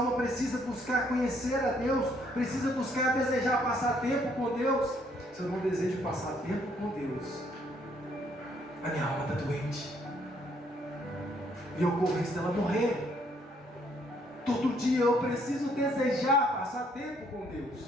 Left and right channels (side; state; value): both; normal; correlation 0.68